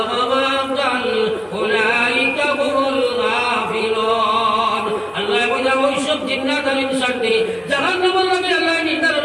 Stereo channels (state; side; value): identical; both; correlation 1.00